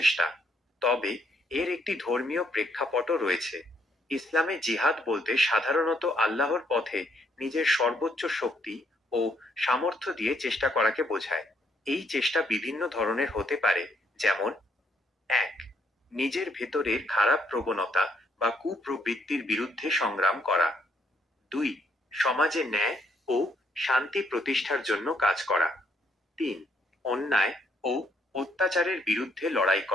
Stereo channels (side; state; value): both; normal; correlation 0.70